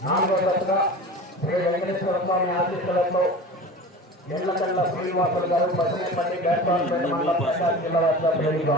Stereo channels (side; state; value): both; normal; correlation 0.35